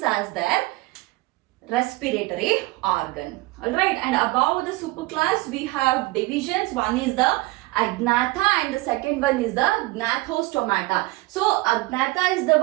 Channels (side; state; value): left; quieter; 21.5 dB